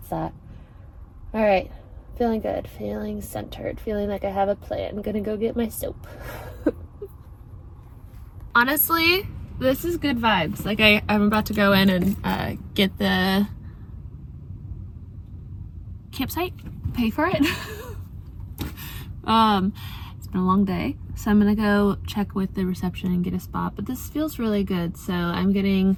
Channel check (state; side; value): identical; both; correlation 1.00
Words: that. All right. Feeling good, feeling centered, feeling like I have a plan. I'm gonna go get my soap. Honestly, this is good vibes. Like I'm about to go in and get the campsite, pay for it. It's been a long day, so I'm gonna go check with the reception and get a spot, but this feels really good, so I'm getting